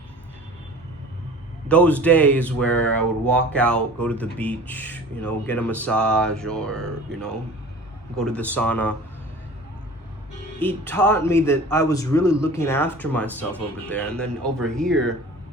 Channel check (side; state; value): both; normal; correlation 0.42